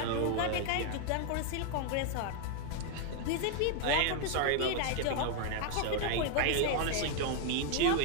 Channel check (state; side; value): different; both; correlation 0.00